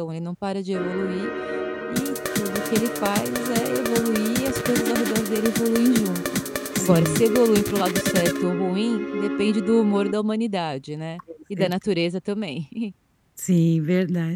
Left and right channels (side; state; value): both; identical; correlation 1.00